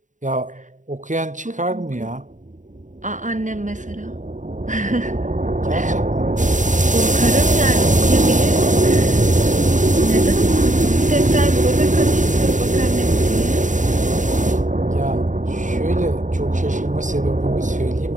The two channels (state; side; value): late; left; 0.36 ms